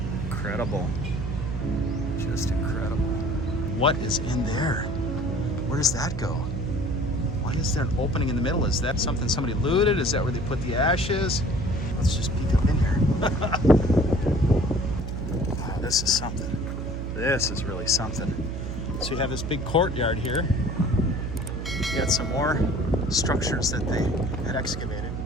Incredible. Just incredible. What is in there? Where does that go? Why is there an opening in the middle? Is that something somebody looted? Is that where they put the ashes? Let's just peek up in here. Oh, this is something. This is really something. So you have this big courtyard here. You got some more structures that they had excavated.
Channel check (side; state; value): right; noise; hum, 4 dB below the sound